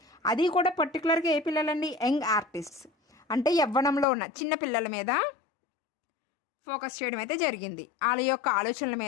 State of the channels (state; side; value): drops out; right; at 4.0 s